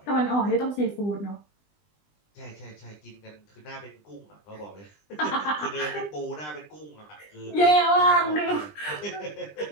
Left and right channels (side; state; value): right; late; 20 ms